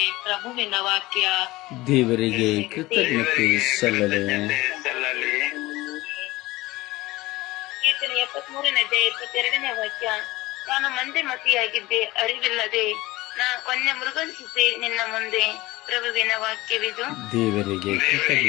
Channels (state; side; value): quieter; right; 19.4 dB